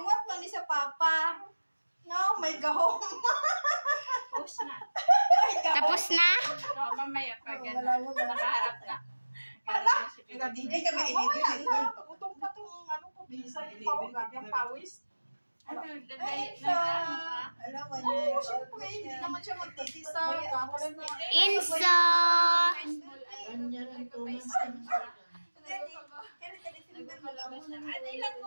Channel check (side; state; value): both; inverted; correlation -1.00